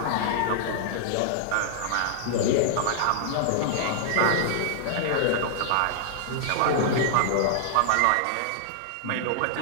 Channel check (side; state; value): both; different; correlation -0.01